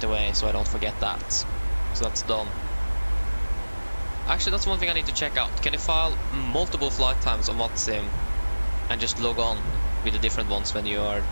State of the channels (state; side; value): inverted; both; correlation -1.00